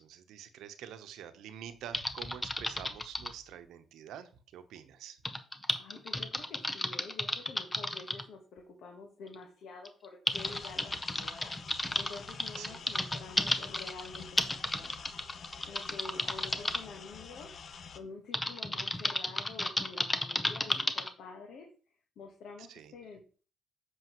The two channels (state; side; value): normal; both; correlation 0.93